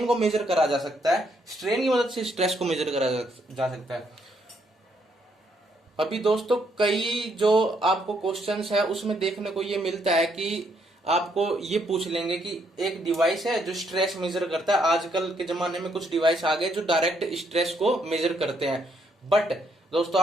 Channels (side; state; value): both; normal; correlation 0.73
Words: को मेजर करा जा सकता है, स्ट्रेन की मदद से स्ट्रेस को मेजर करा जा सकता है। अभी दोस्तों कई जो आपको क्वेश्चंस है उसमें देखने को ये मिलता है कि आपको ये पूछ लेंगे कि एक डिवाइस है जो स्ट्रेस मेजर करता है। आजकल के जमाने में कुछ डिवाइस आ गए जो डायरेक्ट स्ट्रेस को मेजर करते हैं, बट दोस्तों